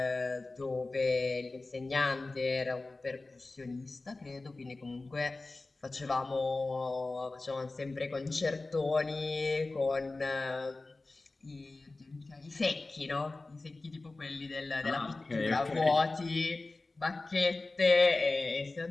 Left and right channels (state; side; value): quieter; right; 3.3 dB